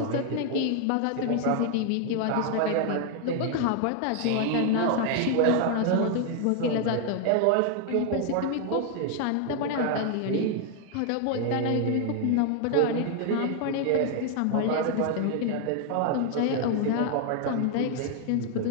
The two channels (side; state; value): both; different; correlation 0.00